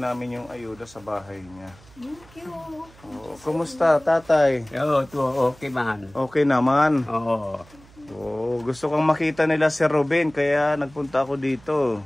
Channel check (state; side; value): noise; right; hum, 25 dB below the sound